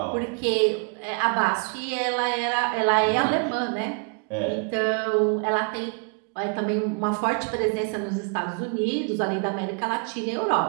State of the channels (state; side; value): quieter; left; 38.5 dB